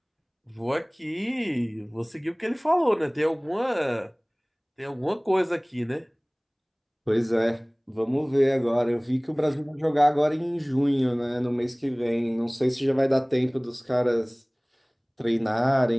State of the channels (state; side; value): identical; both; correlation 1.00